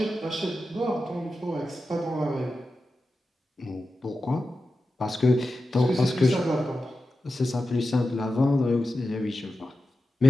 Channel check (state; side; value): normal; both; correlation 0.92